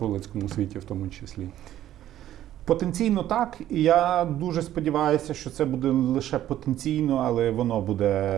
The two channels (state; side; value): quieter; left; 12.5 dB